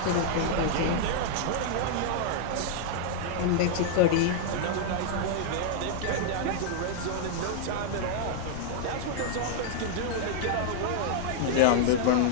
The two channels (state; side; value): different; both; correlation -0.01